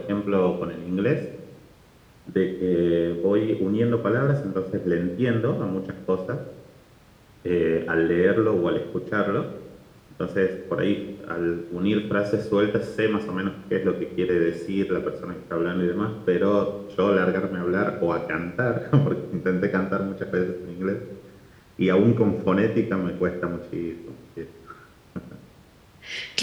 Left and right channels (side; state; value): both; identical; correlation 1.00